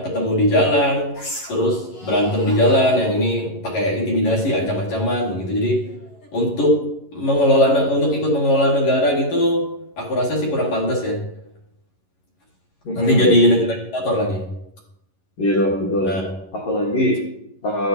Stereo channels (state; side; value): late; right; 11 ms